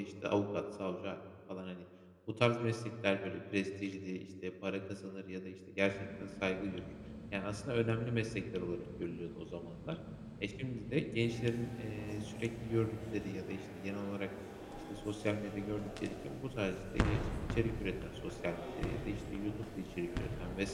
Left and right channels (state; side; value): identical; both; correlation 1.00